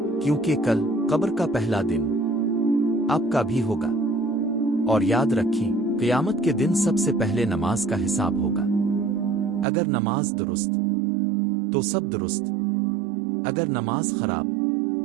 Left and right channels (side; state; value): left; drops out; at 9.7 s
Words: کیونکہ کل قبر کا پہلا دن آپ کا بھی ہوگا۔ اور یاد رکھیں، قیامت کے دن سب سے پہلے نماز کا حساب ہوگا۔ اگر نماز درست تو سب درست، اگر نماز خراب